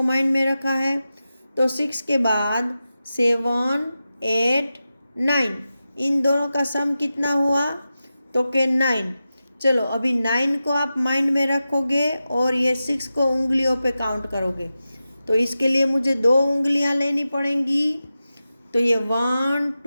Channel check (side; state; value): both; inverted; correlation -0.93